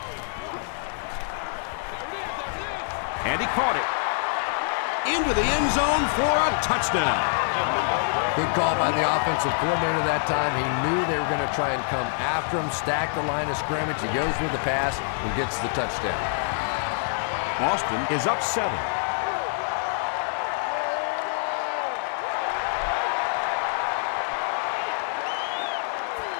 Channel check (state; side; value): silent; right; digital silence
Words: And he caught it. Into the end zone for a touchdown. Good call by the offensive coordinator that time. He knew they were going to try and come after him, stack the line of scrimmage. He goes with the pass and gets the touchdown. Boston is up 7.